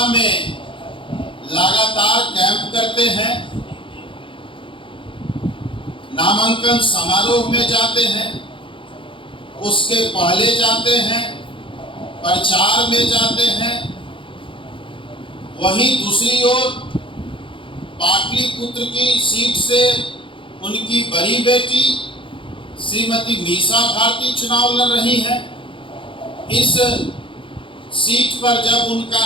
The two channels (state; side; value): late; right; 0.25 ms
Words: में लगातार कैंप करते हैं, नामांकन समारोह में जाते हैं, उसके पहले जाते हैं, प्रचार में जाते हैं। वहीं दूसरी ओर पाटलिपुत्र की सीट से उनकी बड़ी बेटी श्रीमती मीसा भारती चुनाव लड़ रही हैं। इस सीट पर जब